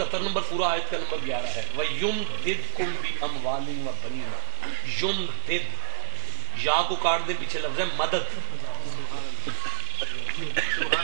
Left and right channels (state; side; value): silent; left; digital silence